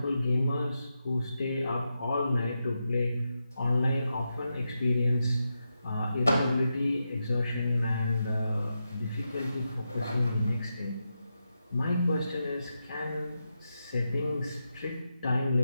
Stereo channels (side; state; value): both; inverted; correlation -0.88